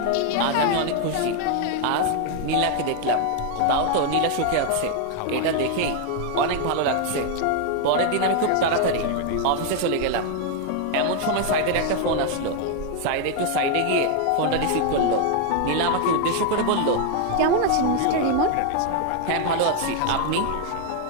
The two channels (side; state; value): both; different; correlation 0.00